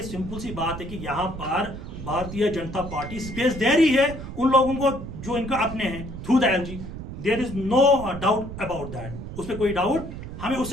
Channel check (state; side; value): noise; right; rumble, 10 dB below the sound